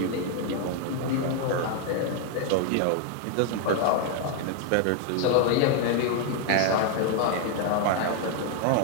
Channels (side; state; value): both; different; correlation 0.00